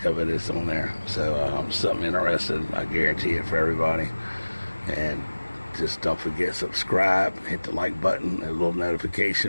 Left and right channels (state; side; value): inverted; both; correlation -1.00